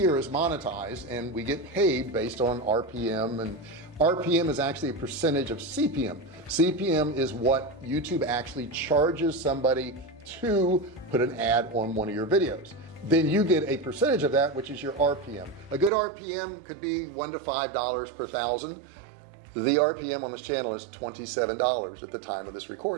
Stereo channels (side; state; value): left; drops out; at 15.9 s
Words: is monetized and we get paid based on RPM, and RPM is actually a percentage of CPM. CPM is what YouTube actually charges somebody to put an ad on one of your videos. Then you get a percentage of that, which is your RPM. A good RPM could be $1 to $5 per thousand. The RPM on this channel is $27 at the time of this